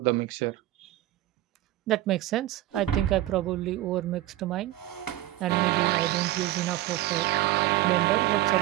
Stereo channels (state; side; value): quieter; left; 15.2 dB